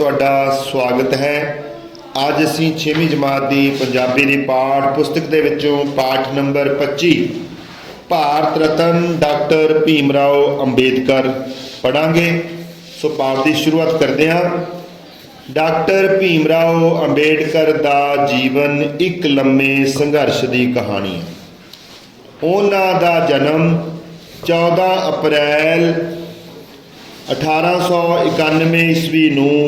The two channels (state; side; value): identical; both; correlation 1.00